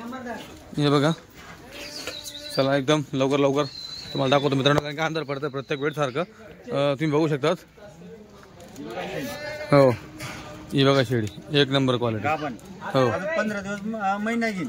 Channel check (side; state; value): both; identical; correlation 1.00